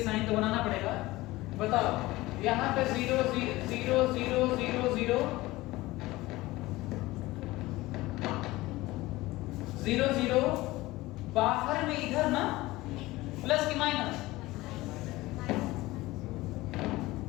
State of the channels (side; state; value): right; quieter; 19.2 dB